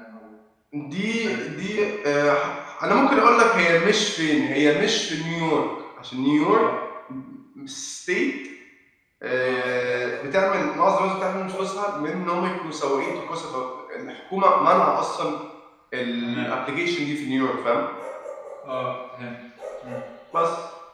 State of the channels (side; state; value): both; identical; correlation 1.00